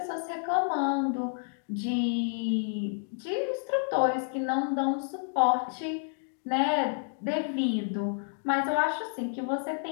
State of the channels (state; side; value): silent; right; digital silence